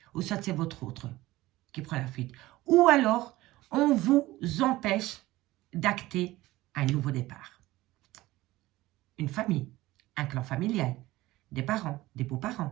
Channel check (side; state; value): left; quieter; 17.8 dB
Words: ou soit c'est votre autre qui prend la fuite. Ou alors, on vous empêche d'acter un nouveau départ. Une famille, un clan familial, des parents, des